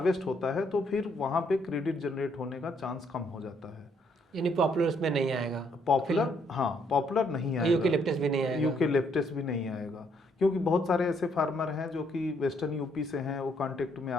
होता है तो फिर वहाँ पे क्रेडिट जनरेट होने का चांस कम हो जाता है। यानी पॉपुलर उसमें नहीं आएगा? पॉपुलर, हाँ, पॉपुलर नहीं आएगा। यूकेलिप्टस भी नहीं आएगा? यूकेलिप्टस भी नहीं आएगा, क्योंकि बहुत सारे ऐसे फार्मर हैं जो कि वेस्टर्न यूपी से हैं, वो कांटेक्ट में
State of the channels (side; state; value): both; normal; correlation 0.71